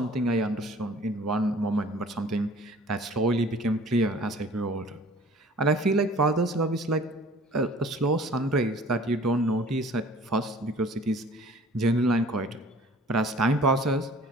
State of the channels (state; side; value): normal; both; correlation 0.49